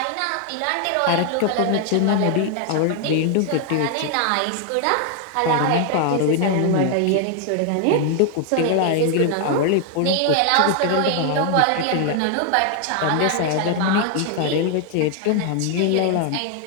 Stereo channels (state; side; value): different; both; correlation 0.00